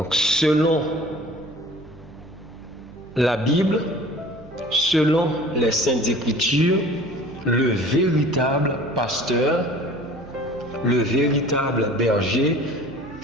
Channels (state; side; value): noise; right; hum, 22 dB below the sound